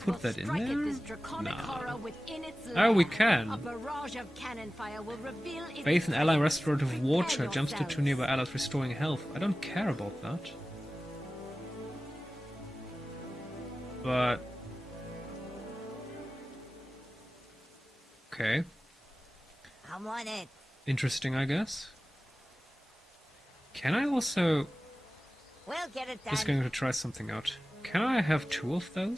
put will that in strike at there? this draconic horror within its Oh, we lair. can. A barrage of cannon fire will reveal its Bathe in ally presence. restorative water. Prepare Jumps to 2 yourselves. nearby allies, restoring health. I don't care about that. But... okay. I'm on it. Interesting, I guess. Can I also... We'll get it done. just going to try something out. Can I have 2 of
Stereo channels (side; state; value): both; normal; correlation 0.96